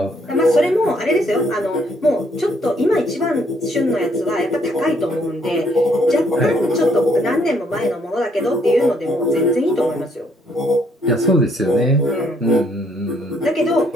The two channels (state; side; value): normal; both; correlation 0.69